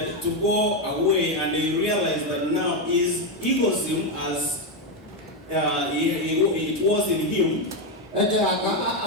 to go away and he realized that now his egoism as it was in him.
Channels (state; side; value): normal; both; correlation 0.06